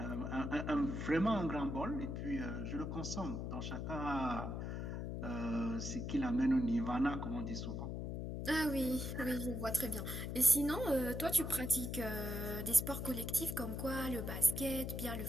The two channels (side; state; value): left; noise; hum, 4 dB below the sound